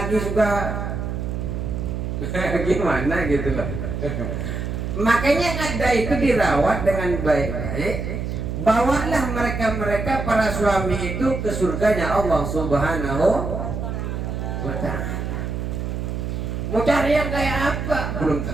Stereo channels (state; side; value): noise; right; hum, 4 dB below the sound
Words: juga gimana gitu loh. Makanya ada itu dirawat dengan baik-baik. Bawalah mereka para suami itu ke surganya Allah Subhanahu wa ta'ala. Mau cari yang kayak apa? Belum